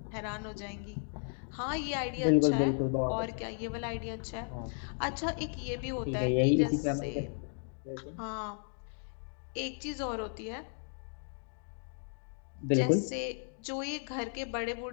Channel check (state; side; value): silent; right; 55 dB below the other